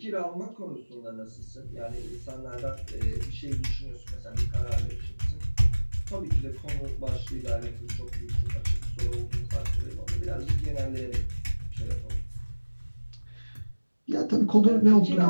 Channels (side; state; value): both; inverted; correlation -1.00